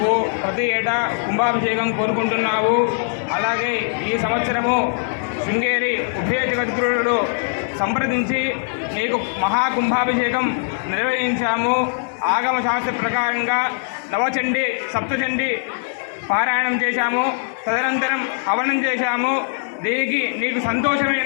ప్రతి ఏటా కుంభాభిషేకం కోరుకుంటున్నావు. అలాగే ఈ సంవత్సరము శృంగేరి ఉభయ జగద్గురుడు సంప్రదించి నీకు మహాకుంభాభిషేకం నిర్వహించాము. ఆగమ శాస్త్ర ప్రకారంగా నవచండి సప్తచండి పారాయణం చేశాము. తదనంతరం హవనం చేశాము. దీనికి నీకు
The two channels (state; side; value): silent; right; digital silence